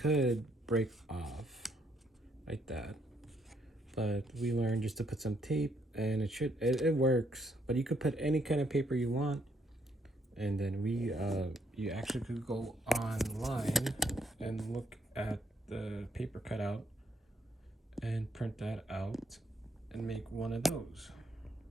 break off like that, but we learned just to put some tape, and it works. But you could put any kind of paper you want. And then you actually could go online and look at the paper cutout and print that out and make one of those.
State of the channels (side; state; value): both; normal; correlation 0.72